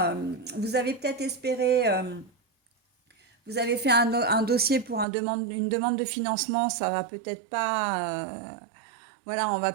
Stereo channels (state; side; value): drops out; left; at 5.1 s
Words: vous avez peut-être espéré, vous avez fait un dossier pour une demande de financement, ça va peut-être pas voilà, on va